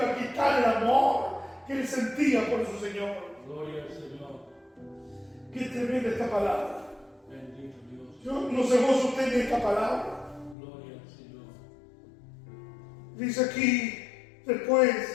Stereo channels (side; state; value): right; drops out; at 10.6 s